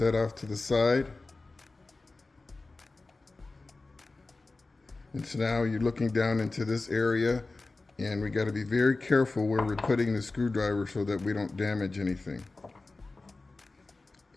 off to the side. And so now you're looking down into this area, and we got to be very careful where we're putting the screwdriver so that we don't damage anything.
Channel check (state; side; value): quieter; right; 3.4 dB